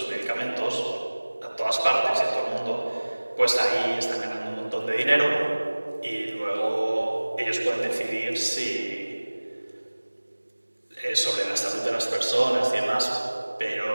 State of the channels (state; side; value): inverted; both; correlation -1.00